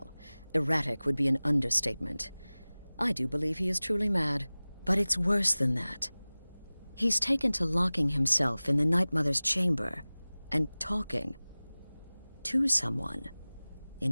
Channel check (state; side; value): inverted; both; correlation -0.99